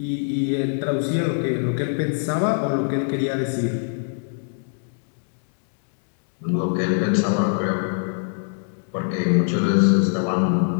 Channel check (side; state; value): right; silent; digital silence